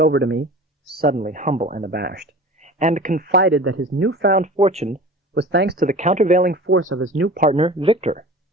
to me, suddenly humble and abashed, and confided that his newfound fortune was thanks to the countervailing force of his new partner, Victor.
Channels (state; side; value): normal; both; correlation 0.39